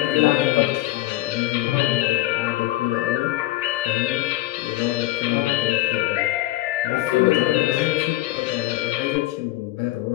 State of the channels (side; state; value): right; quieter; 17.0 dB